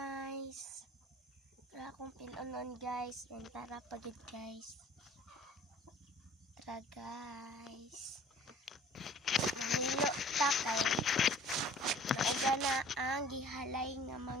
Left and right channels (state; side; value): normal; both; correlation 0.51